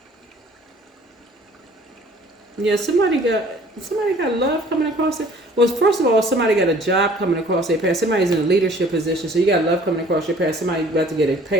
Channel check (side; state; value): both; normal; correlation 0.53